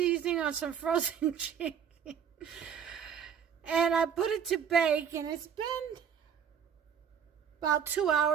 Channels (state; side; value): quieter; left; 7.7 dB